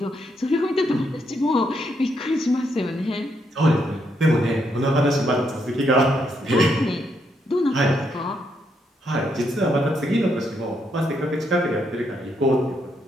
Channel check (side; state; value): both; normal; correlation 0.77